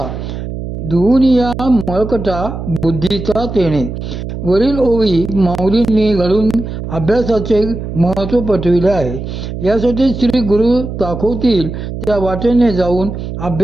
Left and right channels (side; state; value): right; noise; hum, 7 dB below the sound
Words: धुवूनिया मळकटा बुद्धीचा तेणे. वरील ओवी माऊलींनी घालून अभ्यासाचे महत्त्व पटविले आहे. यासाठी श्री गुरु दाखवतील त्या वाटेने जाऊन